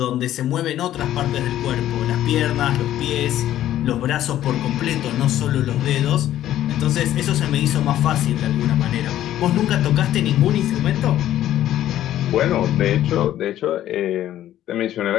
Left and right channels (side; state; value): right; quieter; 12.6 dB